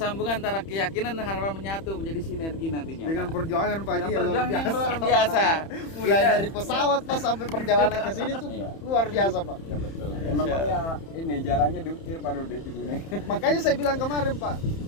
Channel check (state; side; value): late; right; 31 ms